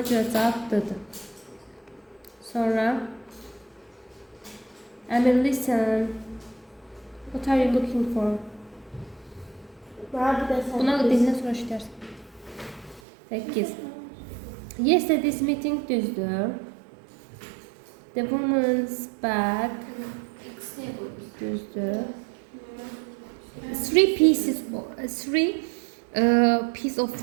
görə cavab D-dir. Sonra Emil, listen. What are you looking for? Buna dindən sonra işlərsən. 8. Yesterday's meeting düzdür. The woman's back düzdür. Three piece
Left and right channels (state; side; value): drops out; left; at 13.0 s